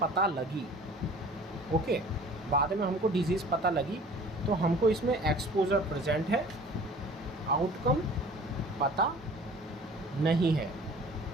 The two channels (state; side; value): normal; both; correlation 0.47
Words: लगी, ओके, बाद में हमको डिज़ीज़ पता लगी, तो हमको इसमें एक्सपोजर प्रेजेंट है, आउटकम पता नहीं है,